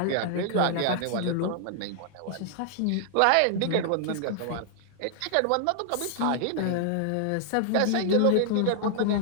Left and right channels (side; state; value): both; different; correlation -0.01